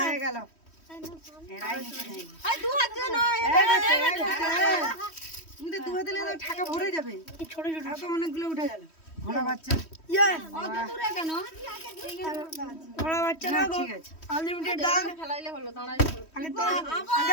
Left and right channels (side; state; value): right; late; 3.1 ms